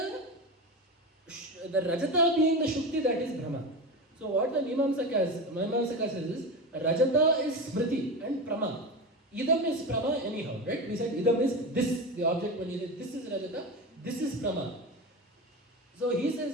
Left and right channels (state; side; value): normal; both; correlation 0.23